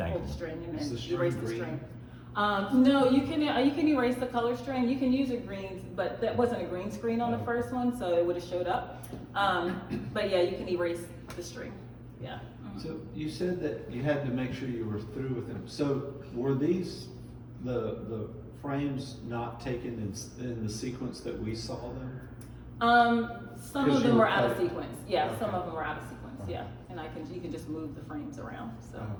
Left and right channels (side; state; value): both; identical; correlation 1.00